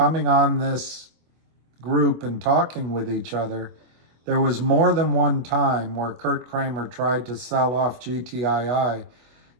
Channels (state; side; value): late; left; 25 ms